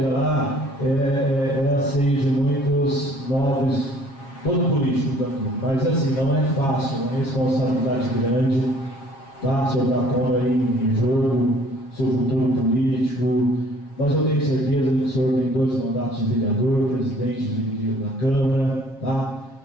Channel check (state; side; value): late; right; 7.3 ms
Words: lá é a ceia de muitos nobres, todo político daqui, mas assim, não é fácil, é uma responsabilidade grande, tá? O senhor está pondo aí em jogo seu futuro político, mas eu tenho certeza que o senhor tem 2 mandatos de vereador, presidente da Câmara, tá?